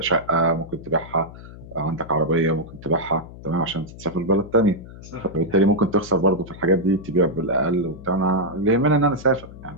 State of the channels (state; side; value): noise; left; hum, 16 dB below the sound